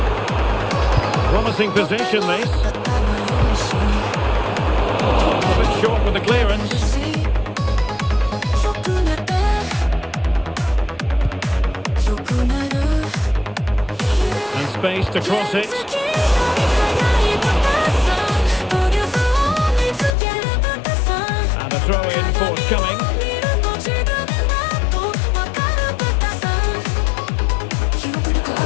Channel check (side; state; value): right; drops out; at 20.2 s